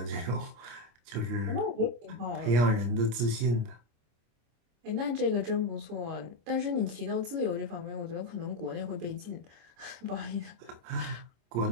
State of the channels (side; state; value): left; late; 25 ms